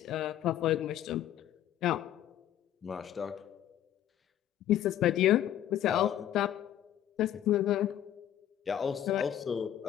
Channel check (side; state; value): right; quieter; 11.4 dB